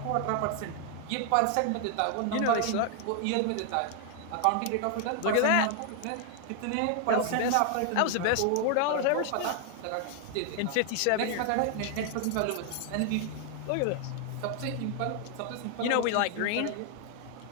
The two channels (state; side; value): different; both; correlation 0.00